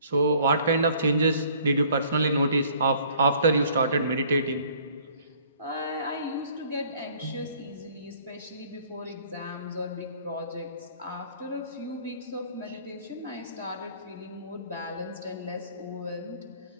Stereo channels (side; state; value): both; inverted; correlation -0.56